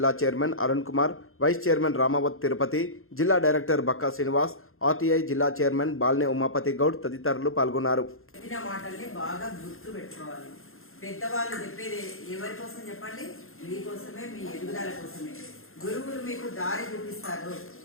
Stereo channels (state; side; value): late; right; 0.61 ms